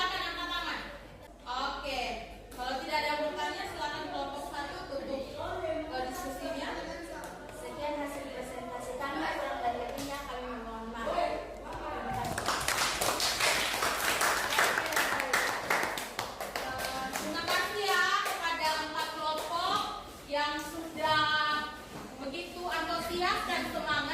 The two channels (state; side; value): identical; both; correlation 1.00